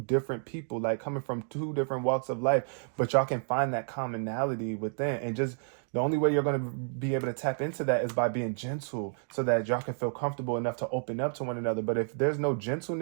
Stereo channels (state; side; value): silent; left; 58 dB below the other